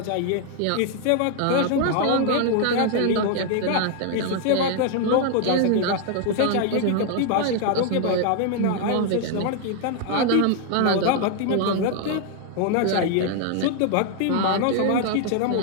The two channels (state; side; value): different; both; correlation 0.00